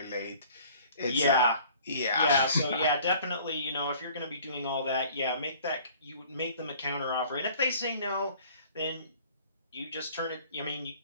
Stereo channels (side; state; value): both; inverted; correlation -0.51